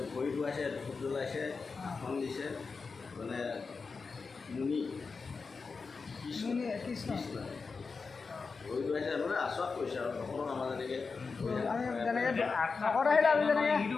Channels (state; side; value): quieter; right; 4.7 dB